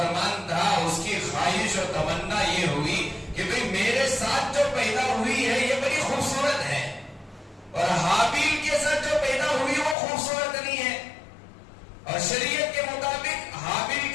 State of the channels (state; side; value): drops out; right; at 10.0 s